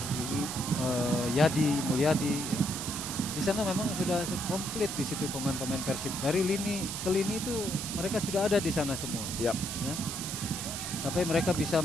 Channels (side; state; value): right; noise; hiss, 5 dB below the sound